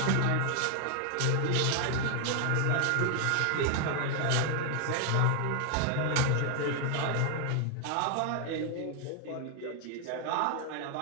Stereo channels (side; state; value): both; different; correlation 0.00